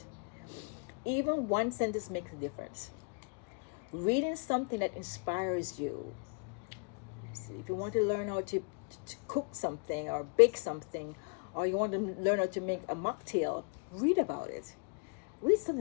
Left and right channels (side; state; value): right; quieter; 38.3 dB